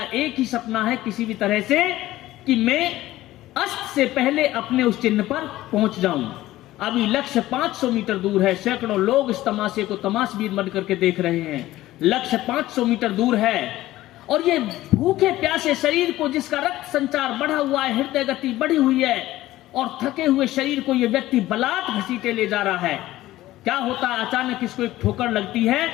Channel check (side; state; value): right; quieter; 15.9 dB